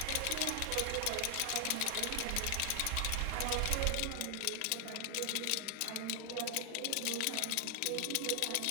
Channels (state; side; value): different; both; correlation 0.00